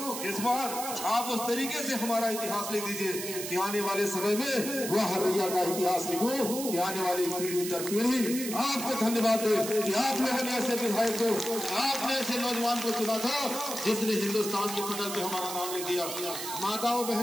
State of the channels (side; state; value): right; noise; hiss, 6 dB below the sound